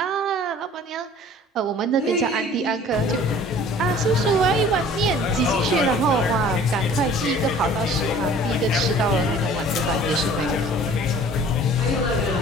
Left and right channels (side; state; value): both; normal; correlation 0.49